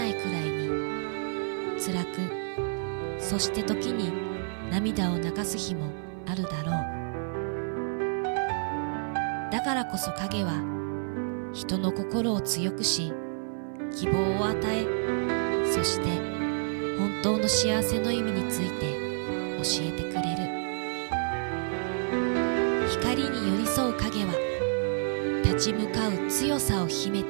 いくらいに辛く、そして時に涙を流す日もあるだろう。だからこそ影は人の心を強くし、希望を与え、そして本当の幸せの意味について教えてくれる。光に寄り添う影は立ち向かう強さを秘め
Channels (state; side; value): silent; left; 58 dB below the other